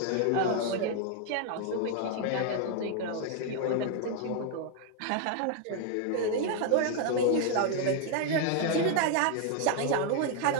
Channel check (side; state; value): both; different; correlation 0.00